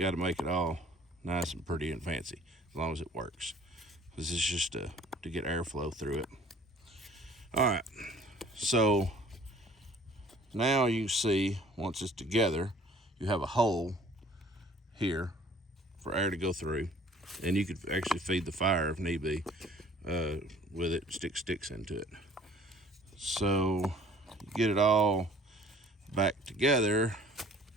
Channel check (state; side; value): normal; both; correlation 0.52